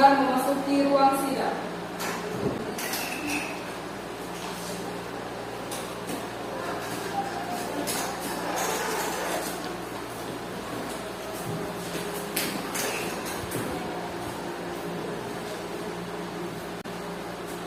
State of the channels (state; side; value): identical; both; correlation 1.00